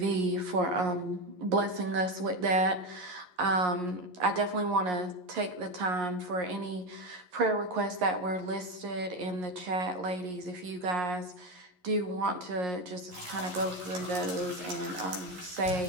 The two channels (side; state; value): left; late; 11 ms